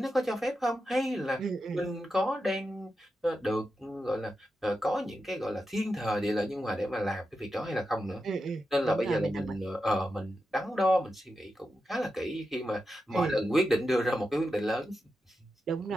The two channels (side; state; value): both; normal; correlation 0.89